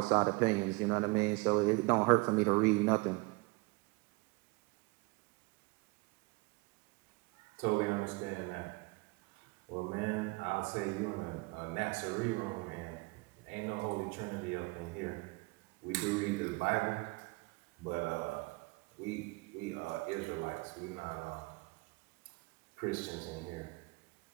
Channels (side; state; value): left; quieter; 27.0 dB